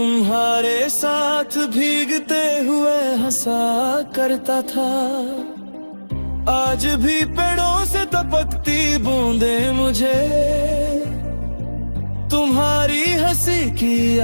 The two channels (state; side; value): inverted; both; correlation -1.00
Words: साथ भीगते हुए हंसा करता था। आज भी पेड़ों से टपकती बूंदे मुझे तुम्हारी हंसी की